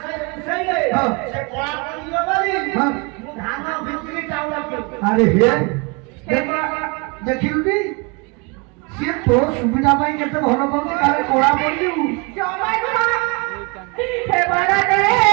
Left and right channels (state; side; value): quieter; left; 30.3 dB